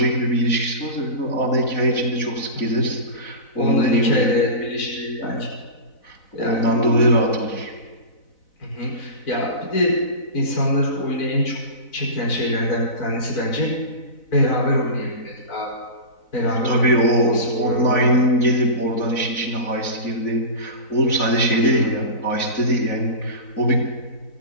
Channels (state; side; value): late; right; 4.0 ms